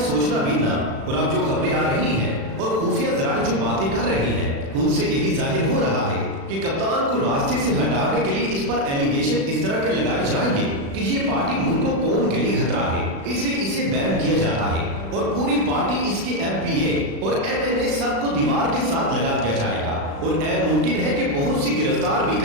سوچنا بھی نہ۔ اور اب جو خبریں آ رہی ہیں اور خفیہ ذرائع جو باتیں کر رہی ہیں، ان سے یہی ظاہر ہو رہا ہے کہ کپتان کو راستے سے ہٹانے کے لیے اس پر ایلیگیشن اس طرح کے لگائے جائیں گے کہ یہ پارٹی ملک و قوم کے لیے خطرہ ہے، اس لیے اسے بین کیا جاتا ہے اور پوری پارٹی، اس کے ایم پی اے اور ایم این اے سب کو دیوار کے ساتھ لگا دیا جائے گا اور ممکن ہے کہ بہت سی گرفتار بھی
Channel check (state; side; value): late; left; 36 ms